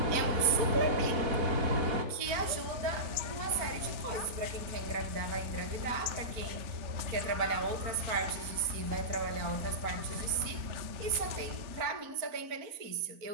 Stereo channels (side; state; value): left; late; 4.3 ms